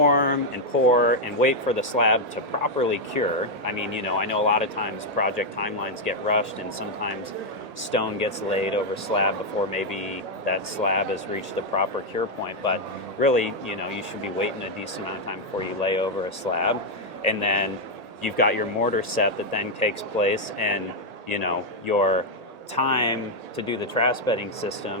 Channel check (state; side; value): late; left; 1.8 ms